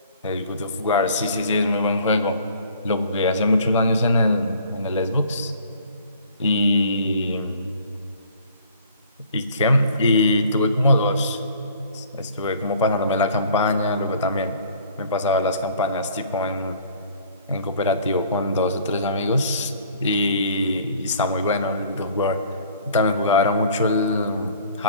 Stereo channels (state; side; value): inverted; both; correlation -0.53